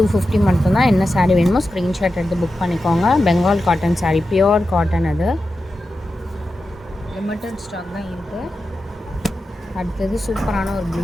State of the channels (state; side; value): normal; both; correlation 0.91